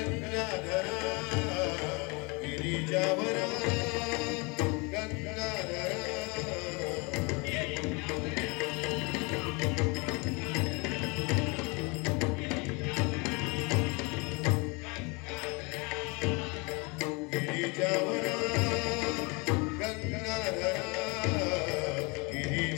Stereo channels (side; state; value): right; quieter; 29.2 dB